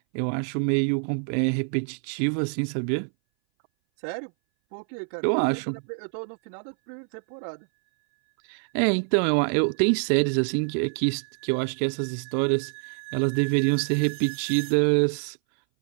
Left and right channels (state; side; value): silent; left; 59 dB below the other